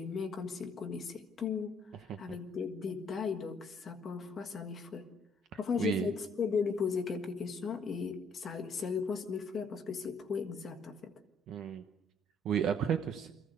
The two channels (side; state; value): both; normal; correlation 0.64